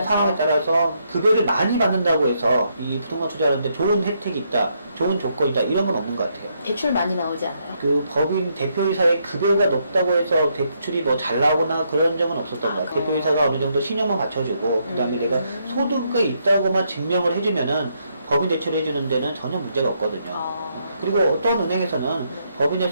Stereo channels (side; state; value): both; inverted; correlation -0.76